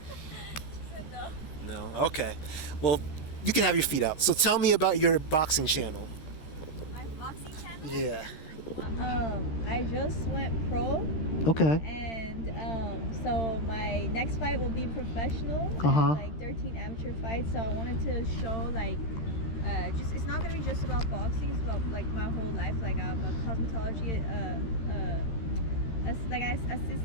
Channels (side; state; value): right; late; 13 ms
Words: said no. No. Okay. Well, you can have your feet out. So tell me about your boxing channel. My boxing channel? Yeah. I just went pro. Okay. And so my next fight will be professional. Like 13 amateur fights. So I wanted to show it's not gonna be just about boxing. It's about like my whole life. Like I'm a cosmetology assistant. I